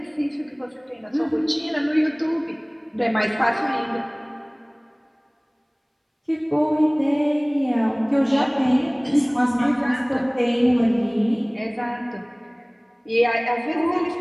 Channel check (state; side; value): identical; both; correlation 1.00